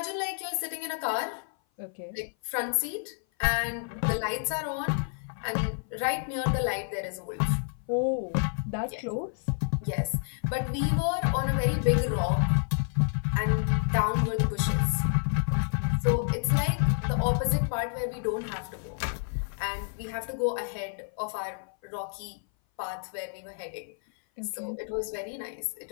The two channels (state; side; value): silent; right; 57 dB below the other